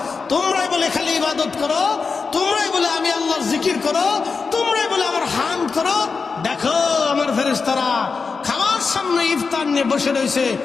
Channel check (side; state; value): right; quieter; 4.9 dB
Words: তোমরাই বলে খালি ইবাদত করো, তোমরাই বলে আমি আল্লাহর জিকির করো, তোমরাই বলে আমার হামদ করো। দেখো আমার ফেরেশতারা খাবার সামনে ইফতার নিয়ে বসে রয়েছে,